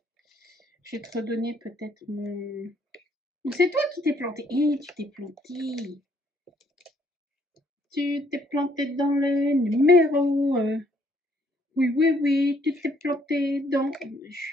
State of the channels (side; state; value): both; normal; correlation 0.67